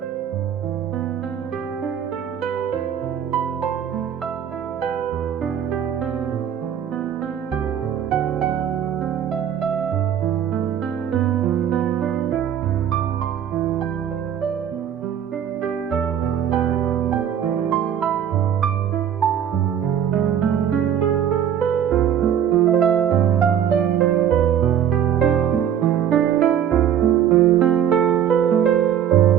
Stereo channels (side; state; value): left; quieter; 9.3 dB